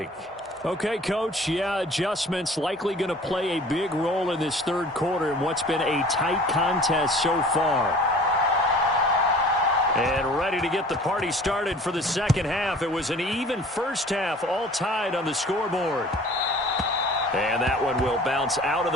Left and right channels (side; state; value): both; normal; correlation 0.47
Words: Okay, Coach, yeah, adjustments likely going to play a big role in this third quarter in what's been a tight contest so far. And ready to get the party started for the second half. It was an even first half, all tied on the scoreboard. And that one will bounce out of